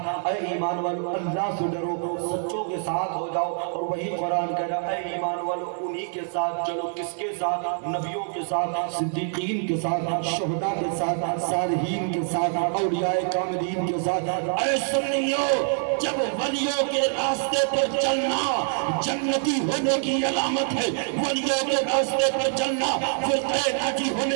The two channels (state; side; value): silent; left; 61 dB below the other